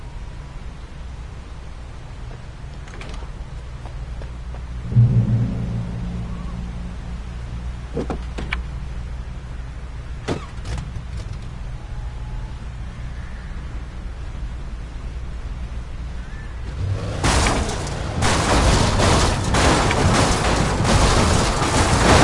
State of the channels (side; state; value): both; identical; correlation 1.00